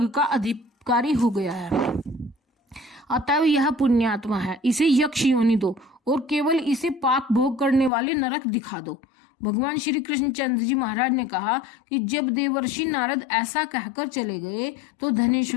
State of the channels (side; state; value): right; drops out; at 7.9 s